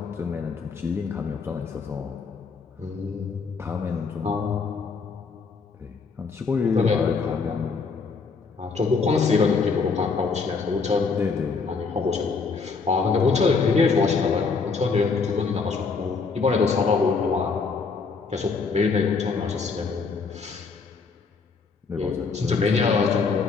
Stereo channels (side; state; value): right; quieter; 4.8 dB